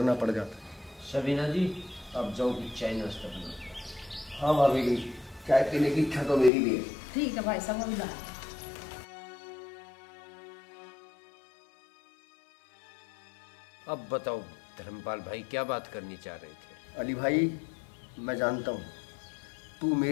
पड़ जाता है। सबीना जी, अब जाओ कि चाय नाश्ता बना। हाँ भाभी जी, चाय पीने की इच्छा तो मेरी भी है। ठीक है भाई साहब, अभी ला। अब बताओ धर्मपाल भाई, क्या बात करनी चाह रहे थे? अली भाई, मैं जानता हूँ तू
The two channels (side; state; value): right; drops out; at 6.5 s